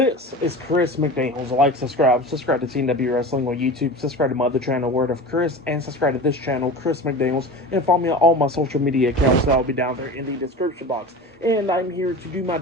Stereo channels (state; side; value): normal; both; correlation 0.32